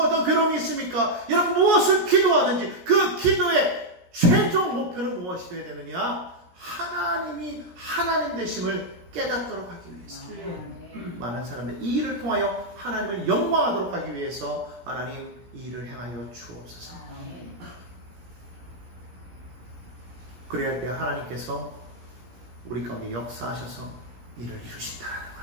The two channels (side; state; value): left; late; 17 ms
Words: 어떤 괴로움이 있습니까? 여러분 무엇을 기도하든지 그 기도의 최종 목표는 무엇이 되어야 되느냐? 하나님이 하나님 되심을 깨닫도록 하기 위해서. 많은 사람들이 이 일을 통하여 하나님을 영광하도록 하기 위해서 하나님 이 일을 행하여 주옵소서. 그래야 할 때 하나님께서 우리 가운데 역사하셔서 일을 이루신다.